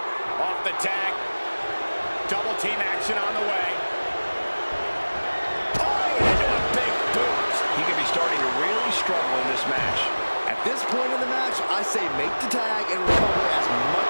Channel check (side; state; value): both; inverted; correlation -1.00